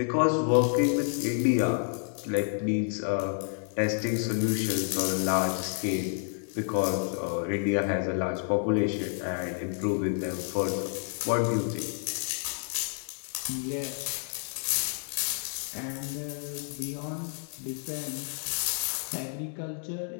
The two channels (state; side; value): silent; right; 58 dB below the other